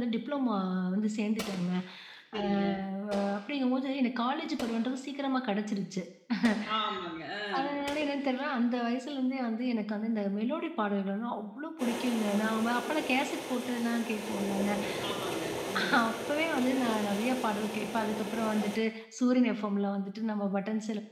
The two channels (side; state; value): both; identical; correlation 1.00